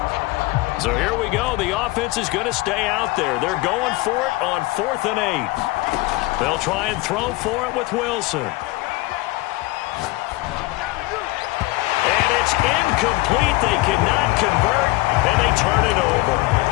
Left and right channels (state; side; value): quieter; right; 20.6 dB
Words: So here we go. The offense is going to stay out there. They're going for it on 4th and 8. They'll try and throw for it with Wilson. And it's incomplete. They cannot convert, and they turn it over.